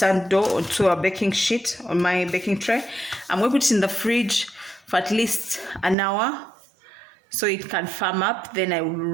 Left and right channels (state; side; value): drops out; left; at 6.0 s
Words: dough onto a baking sheet on my baking tray. I'm going to put it in the fridge for at least an hour so it can firm up. Then I will